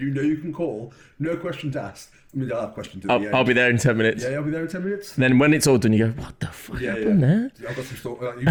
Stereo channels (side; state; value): both; identical; correlation 1.00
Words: know you can call, no questions asked. I mean, they'll have questions at the end. I'll be there in 10 minutes. Yeah, I'll be there in 10 minutes. And then when it's all done, you go, what the fuck Yeah, happened there? I've got some you've